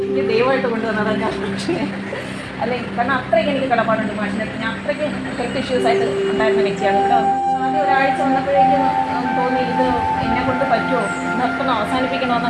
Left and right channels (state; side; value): identical; both; correlation 1.00